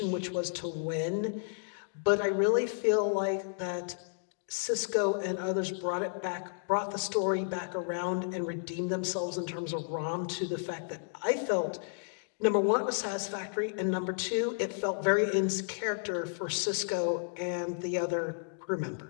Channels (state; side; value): silent; right; digital silence